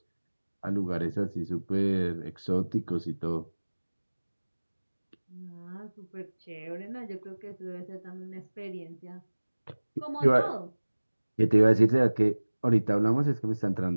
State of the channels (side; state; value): both; inverted; correlation -1.00